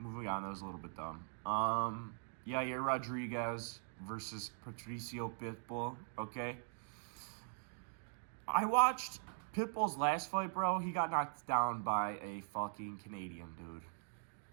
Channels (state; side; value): silent; left; digital silence